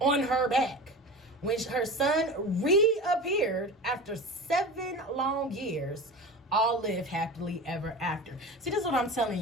her back. When her son reappeared after 7 long years, all live happily ever after. See, this is what I'm telling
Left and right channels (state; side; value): normal; both; correlation 0.31